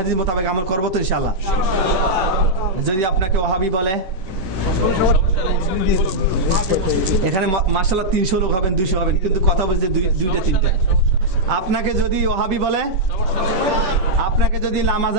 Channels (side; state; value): left; late; 10 ms